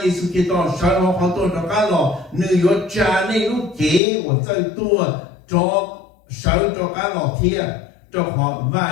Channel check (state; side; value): drops out; right; at 4.0 s